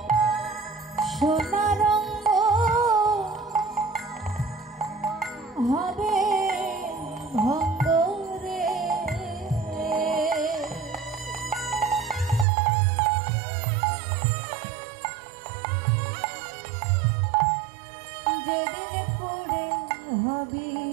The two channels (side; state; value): left; drops out; at 12.5 s